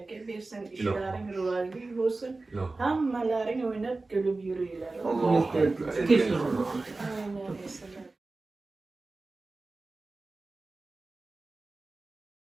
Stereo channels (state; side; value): quieter; left; 3.4 dB